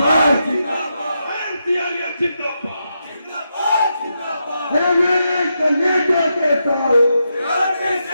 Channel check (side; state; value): both; inverted; correlation -0.84